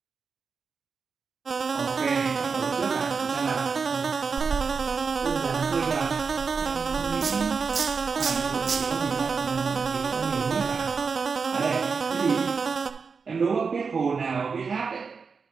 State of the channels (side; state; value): left; quieter; 5.3 dB